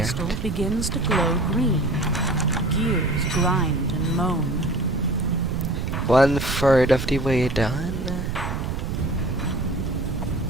out. begins to glow green. gears grind and moan. 1/3 of the way done.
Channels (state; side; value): noise; right; rumble, 3 dB below the sound